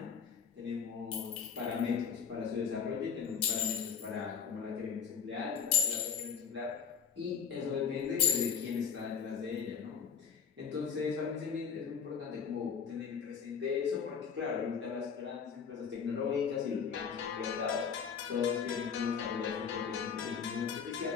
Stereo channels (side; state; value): right; quieter; 6.7 dB